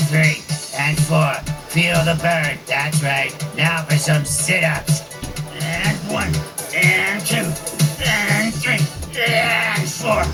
3, and 4. Feel the burn. That's right. Now for some sit-ups. And 1, and 2, and 3, and 4.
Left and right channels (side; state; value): both; identical; correlation 1.00